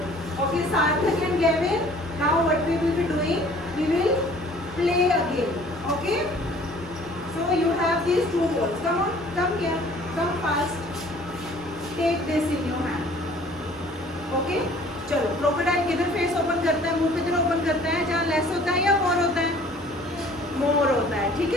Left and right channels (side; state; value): both; normal; correlation 0.53